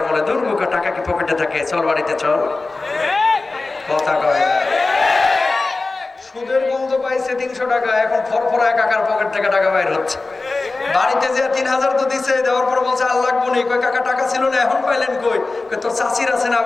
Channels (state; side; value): quieter; right; 3.5 dB